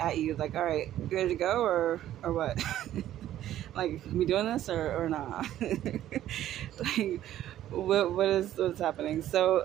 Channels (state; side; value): quieter; left; 12.5 dB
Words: at you, like, all right, you ready to go, or what? Like, we doing this, or not? Like, what's happening?